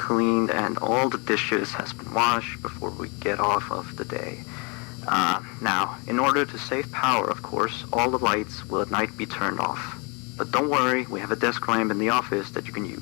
and all the dishes has been washed before we get off of the day. Now, in order to save power, of course, all the lights will at night be turned off. But don't worry, we have a desk lamp in the office that you can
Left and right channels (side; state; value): right; quieter; 32.0 dB